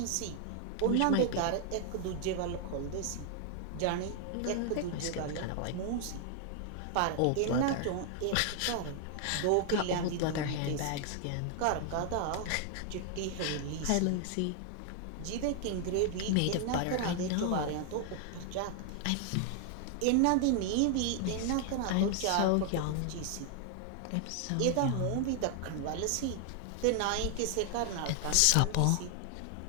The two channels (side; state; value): both; different; correlation 0.00